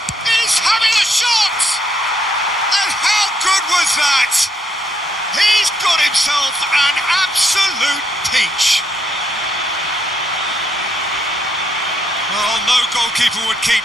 He's having a shot! And how good was that? He's got himself an absolute peach. Well, no goalkeeper would keep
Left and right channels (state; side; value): normal; both; correlation 0.74